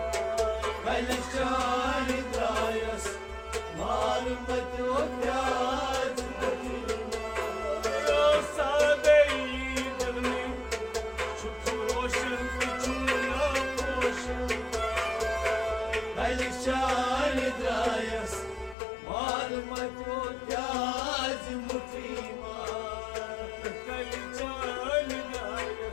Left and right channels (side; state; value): right; drops out; at 18.8 s